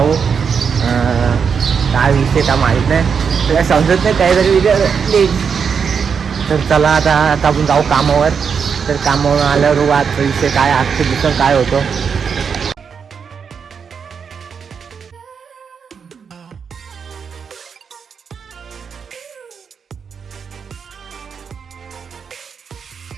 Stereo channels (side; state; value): left; quieter; 6.4 dB